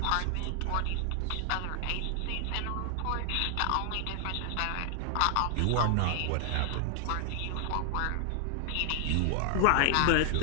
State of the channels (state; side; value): different; both; correlation 0.00